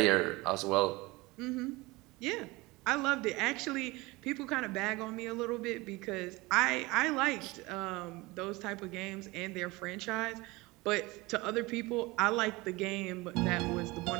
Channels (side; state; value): left; quieter; 22.4 dB